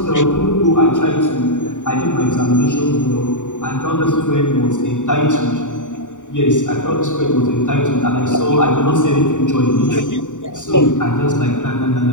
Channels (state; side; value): late; right; 0.86 ms